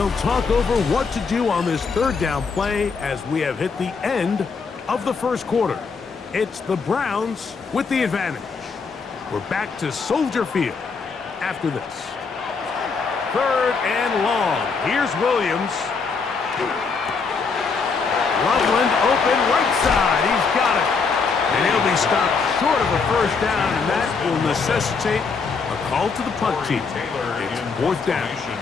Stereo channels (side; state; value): right; quieter; 5.0 dB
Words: talk over what to do on this third down play as we have hit the end of the first quarter. It's the Browns with the advantage. We're back to Soldier Field after this. Third and long. Here's Williams. Loveland open right side. He's got it. And he'll be stopped short of a first down, and that will necessitate a call to the punt team. It's fourth down.